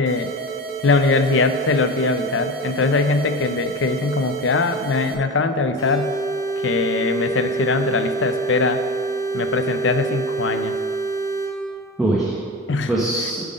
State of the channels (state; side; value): normal; both; correlation 0.27